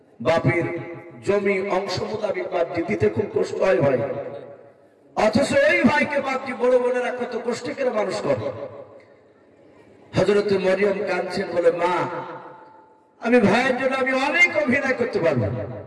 বাপের জমি অংশ মোতাবেক বাপজি দিতে খুব কষ্ট হয় ভাই, অথচ এই ভাইকে বাপজি বড় বোনেরা কত কষ্ট করে মানুষ করে। হযরত মরিয়ম কাঁদছেন, বলে মা আমি ভাইয়ের জন্য আমি অনেক অভিনয় করতে পারবো,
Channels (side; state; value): both; identical; correlation 1.00